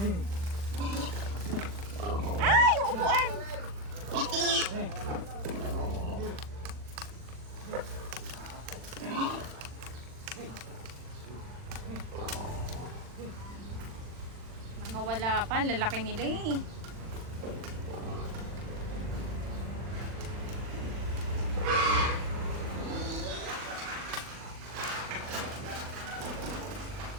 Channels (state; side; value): late; left; 40 ms